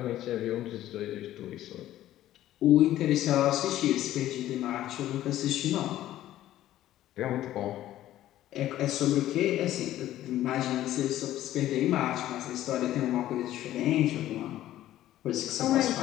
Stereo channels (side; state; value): right; quieter; 13.6 dB